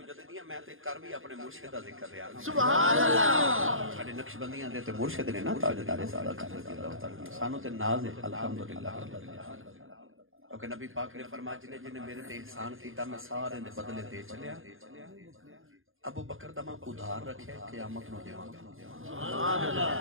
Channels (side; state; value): left; late; 0.59 ms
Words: میں تے کر بھی اپنے مرشد دا ذکر رہا سبحان اللہ ساڈے نقشبندیاں دے تے مرشد نے نا تاجدار صداقت رضی اللہ تعالی سانو تے ناز ہے الحمدللہ کیونکہ نبی پاک نے فرمایا جن میرے تے احسان کیتا میں سارے دے بدلے دے چلیا ابو بکر دا میں ادھار رکھے قیامت نو دیواں گا سبحان